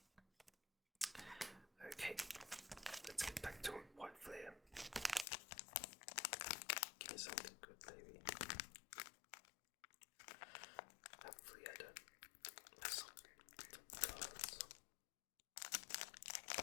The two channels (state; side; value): drops out; right; at 5.2 s